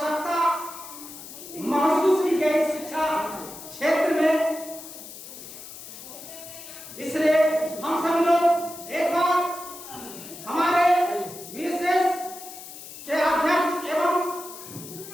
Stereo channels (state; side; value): noise; left; hiss, 14 dB below the sound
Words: महसूस की गई शिक्षा क्षेत्र में, इसलिए हम सब लोग एक बार हमारे विशेष के अध्यक्ष एवं